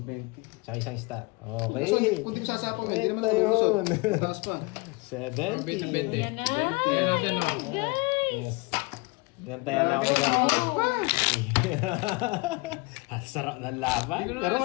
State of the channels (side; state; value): right; quieter; 26.5 dB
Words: Tsaka isang star. Basta Okay. kung di mo sasapaw eh, hindi naman Ito ako lumusot. yun. Taas pa. 70. 20. Yan na! Yan natin o. Yes. Nantayan na ako ni Garpo. Ang sarap ng laban. Hindi ko na Pero